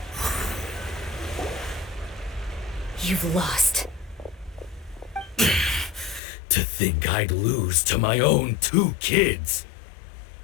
You've lost. To think I'd lose to my own 2 kids.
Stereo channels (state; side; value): drops out; right; at 6.2 s